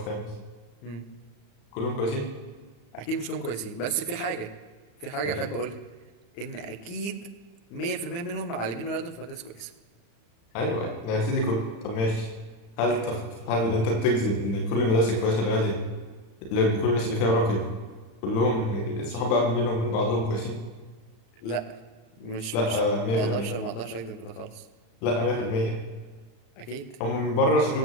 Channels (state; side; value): late; right; 35 ms